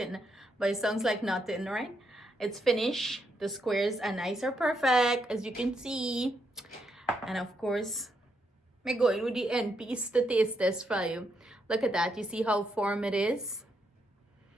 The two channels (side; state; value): both; normal; correlation 0.79